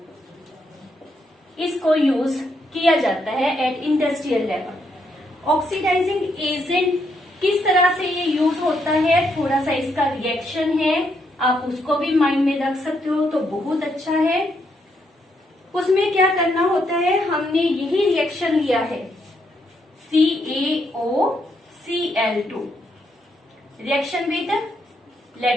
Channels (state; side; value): normal; both; correlation 0.77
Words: इसको यूज किया जाता है at industrial level. Oxidising agent किस तरह से ये यूज होता है, थोड़ा सा इसका रिएक्शन है, आप उसको भी माइंड में रख सकते हो तो बहुत अच्छा है। उसमें क्या करना होता है, हमने यही रिएक्शन लिया है CaOCl2 reaction with